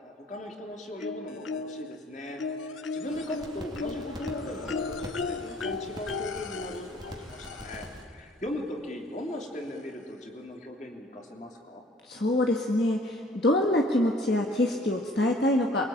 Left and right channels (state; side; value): normal; both; correlation 0.55